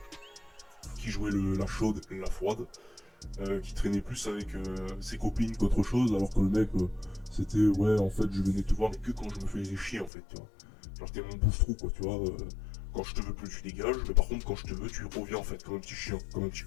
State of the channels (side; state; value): right; drops out; at 10.1 s